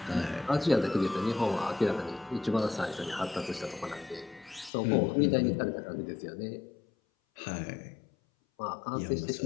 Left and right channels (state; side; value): drops out; right; at 4.7 s